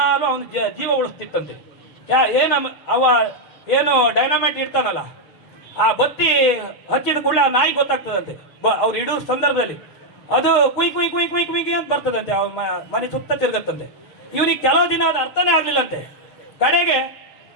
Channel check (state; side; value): late; right; 7.1 ms